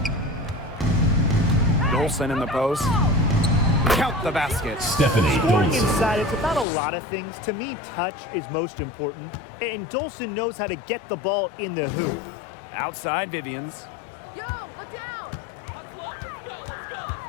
Dolson in the post. Count the basket. Stephanie Scoring Dolson. inside, it's about a lot of things. To me, touch is most important, and Dolson knows how to get the ball in the hoop. Outside Vivians. Yo, look down!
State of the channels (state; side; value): drops out; right; at 6.7 s